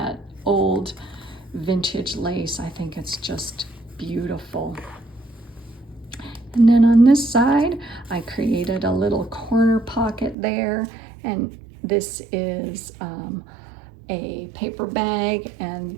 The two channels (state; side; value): drops out; left; at 10.4 s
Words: old vintage lace. I think it's just beautiful. And then on this side, I created a little corner pocket there, and this is a paper bag, and